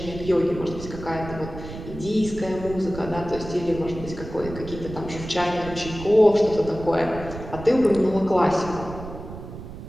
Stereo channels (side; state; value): right; noise; rumble, 11 dB below the sound